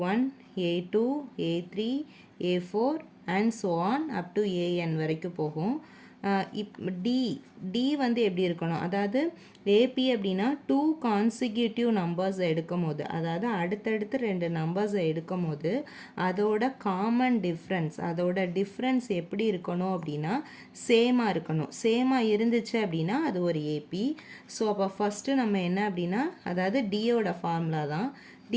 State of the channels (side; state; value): both; identical; correlation 1.00